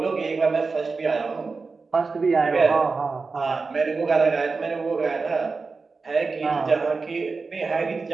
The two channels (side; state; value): left; quieter; 4.3 dB